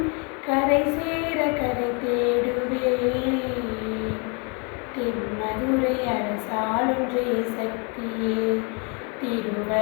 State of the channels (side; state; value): right; quieter; 34.0 dB